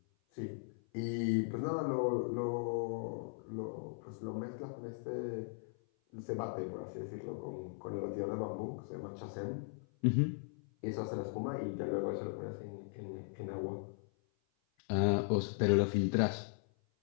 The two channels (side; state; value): right; silent; 52 dB below the other